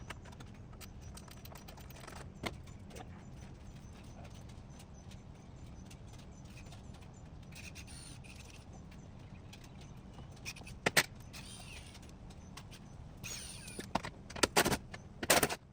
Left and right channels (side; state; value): both; identical; correlation 1.00